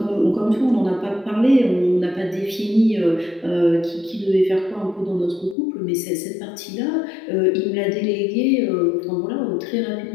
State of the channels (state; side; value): drops out; right; at 5.6 s